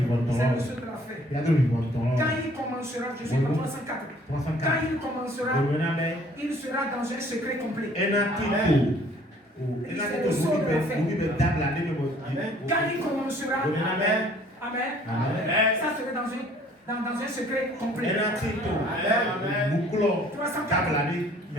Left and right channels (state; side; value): normal; both; correlation 0.56